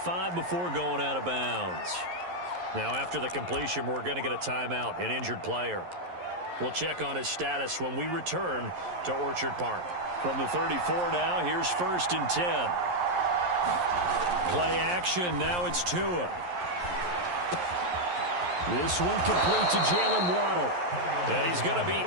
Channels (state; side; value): late; left; 11 ms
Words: before going out of bounds. Now after the completion, we're going to get a timeout, an injured player. We'll check on his status when we return to Orchard Park. From the 34 now, here's 1st and 10. Play action, now it's Tua. This one complete to Jalen Waddle. And he's going to be